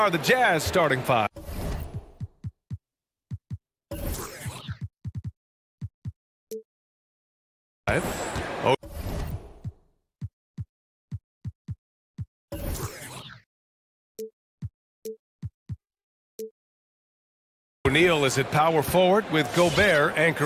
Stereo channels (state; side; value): identical; both; correlation 1.00